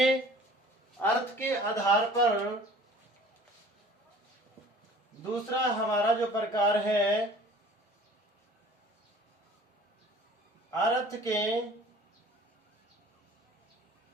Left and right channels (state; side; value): normal; both; correlation 0.48